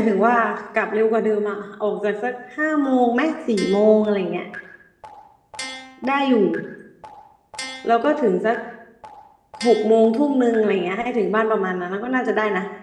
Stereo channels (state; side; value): identical; both; correlation 1.00